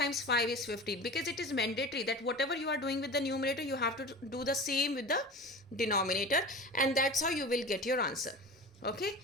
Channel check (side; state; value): both; normal; correlation 0.34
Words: 5 is 15, because it is mandatory that whatever you are doing with the numerator, you have to do the same with the denominator, and that's how you will get your answer. Okay,